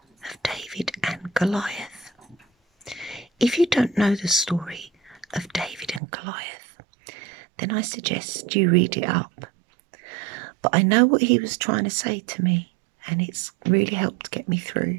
of David and Goliath. If you don't know the story of David and Goliath, then I suggest you read it up. But I know what he was trying to say to me, and it's really helped get me through.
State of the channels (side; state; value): left; drops out; at 6.0 s